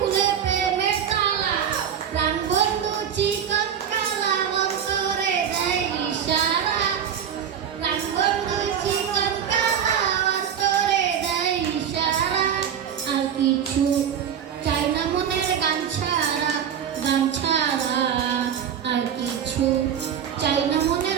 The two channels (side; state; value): left; quieter; 8.5 dB